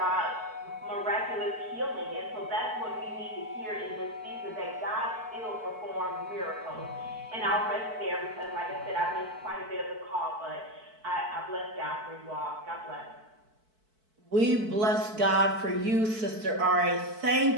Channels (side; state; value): left; late; 4.6 ms